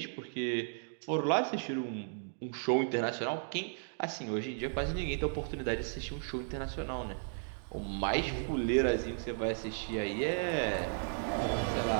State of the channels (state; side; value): silent; left; digital silence